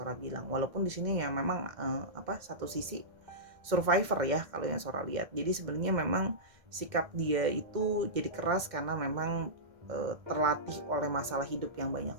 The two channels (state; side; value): late; left; 1.6 ms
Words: bilang. Walaupun di sini ya memang satu sisi survivor ya kalau yang Sora lihat. Jadi sebenarnya memang sikap dia itu jadi keras karena memang terlatih oleh masalah hidup yang banyak